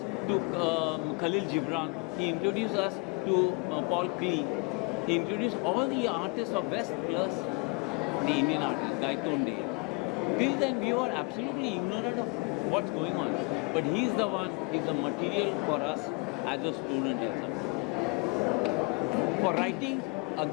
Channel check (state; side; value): quieter; right; 31.3 dB